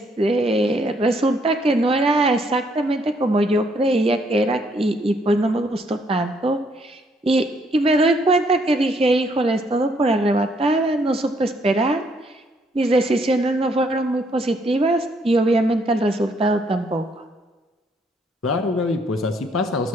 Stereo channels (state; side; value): normal; both; correlation 0.69